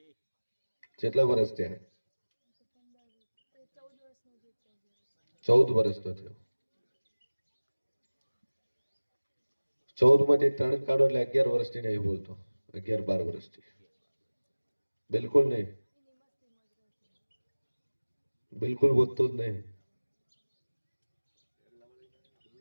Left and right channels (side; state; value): both; inverted; correlation -1.00